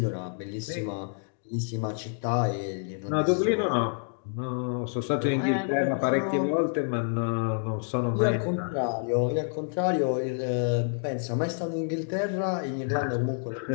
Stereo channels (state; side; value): silent; right; digital silence